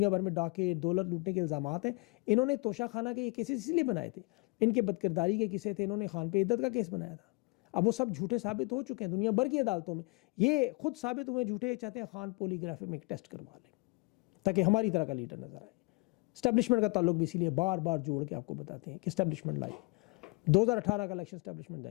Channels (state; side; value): quieter; right; 28.7 dB